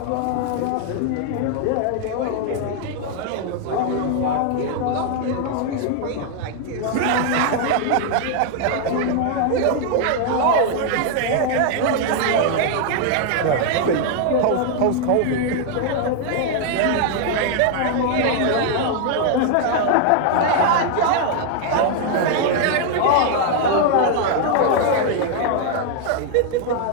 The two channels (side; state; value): both; different; correlation 0.00